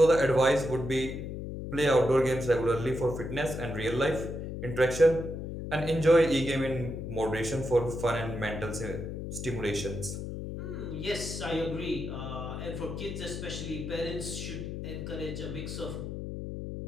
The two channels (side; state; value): left; noise; hum, 6 dB below the sound